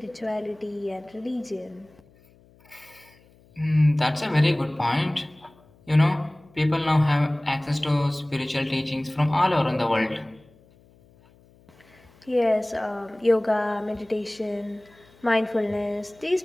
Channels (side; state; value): left; noise; hum, 29 dB below the sound